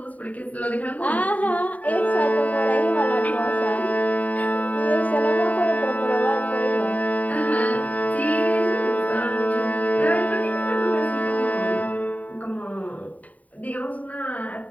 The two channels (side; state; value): right; late; 0.071 ms